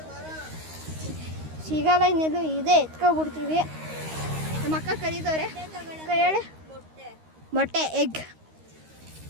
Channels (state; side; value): late; left; 13 ms